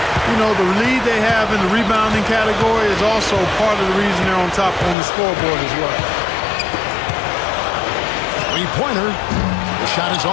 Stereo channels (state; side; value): drops out; right; at 5.0 s